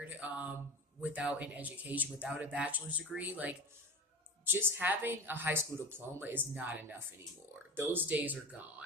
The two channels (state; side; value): normal; both; correlation 0.32